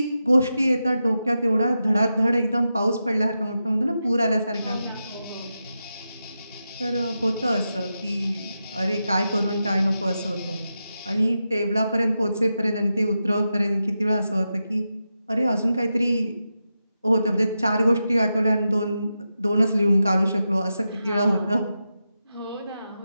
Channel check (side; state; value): both; inverted; correlation -0.89